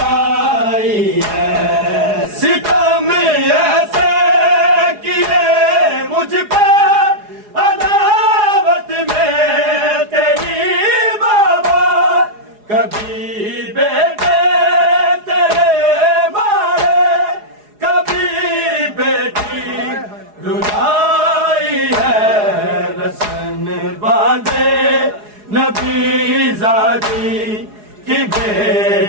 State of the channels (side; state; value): left; late; 4.8 ms